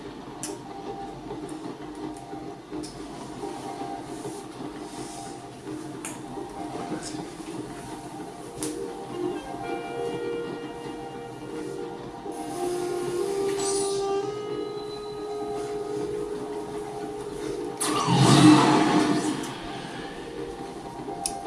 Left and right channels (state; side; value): identical; both; correlation 1.00